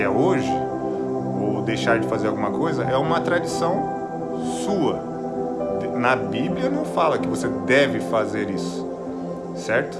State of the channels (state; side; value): noise; right; hum, 26 dB below the sound